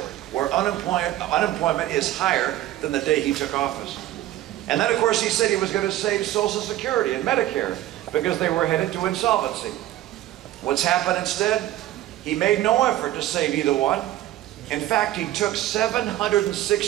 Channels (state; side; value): quieter; left; 14.2 dB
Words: where unemployment is higher than the day he took office. And then, of course, he said he was going to save Social Security and Medicare because they were headed to insolvency. What's happened instead? He made no effort to save either one. In fact, he took